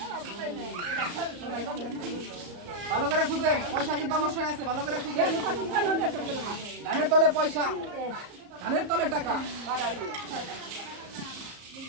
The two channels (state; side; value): late; left; 34 ms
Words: ভালো করে খুঁজেন, পয়সা কিন্তু অবশ্যই আছে। ভালো করে খুঁজেন। ধানের তলে পয়সা, ধানের তলে টাকা।